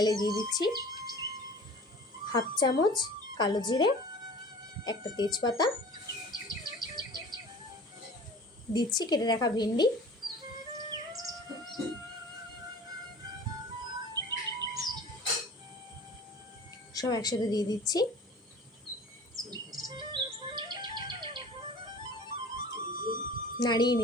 দিয়ে দিচ্ছি হাফ চামচ কালো জিরে, একটা তেজপাতা, দিচ্ছি কেটে রাখা ভেন্ডি, সব একসাথে দিয়ে দিচ্ছি। নাড়িয়ে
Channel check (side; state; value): both; normal; correlation 0.43